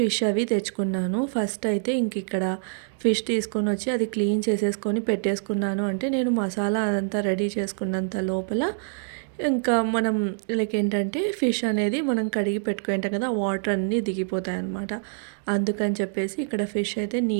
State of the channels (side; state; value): left; silent; digital silence